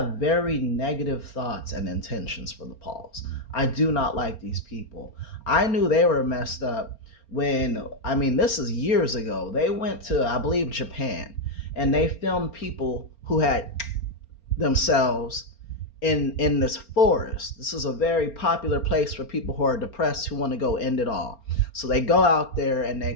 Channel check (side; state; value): right; late; 4.3 ms